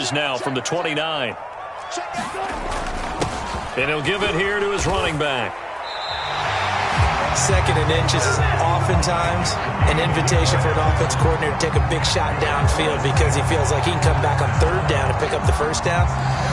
now from the 29. And he'll give it here to his running back. Second and inches is oftentimes an invitation for an offense coordinator to take a big shot downfield because he feels like he can come back on third down and pick up the first down.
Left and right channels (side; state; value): both; identical; correlation 1.00